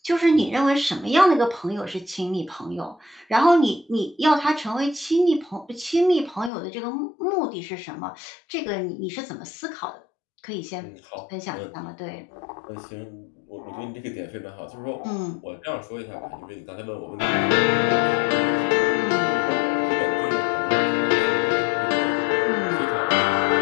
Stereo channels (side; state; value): right; drops out; at 6.5 s